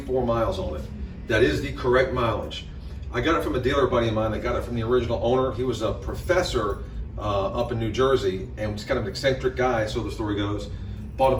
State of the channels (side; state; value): both; identical; correlation 1.00